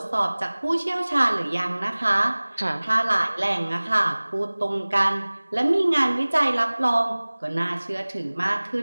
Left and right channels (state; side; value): inverted; both; correlation -1.00